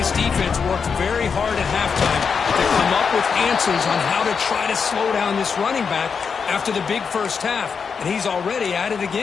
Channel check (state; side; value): quieter; right; 5.9 dB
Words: defense worked very hard at halftime to come up with answers on how to try to slow down this running back after the big first half, and he's already at it